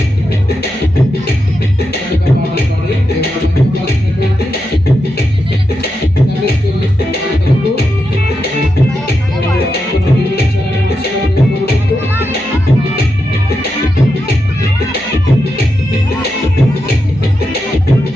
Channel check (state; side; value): normal; both; correlation 0.87